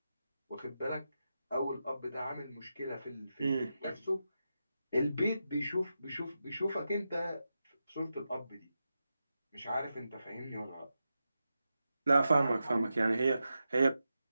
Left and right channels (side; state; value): both; inverted; correlation -0.89